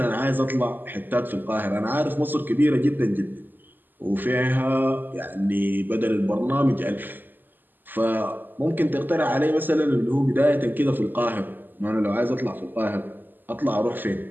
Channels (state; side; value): late; left; 0.090 ms